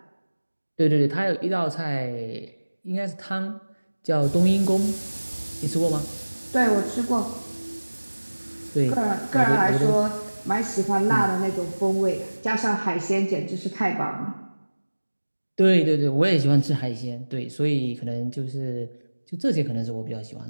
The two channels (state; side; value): inverted; both; correlation -1.00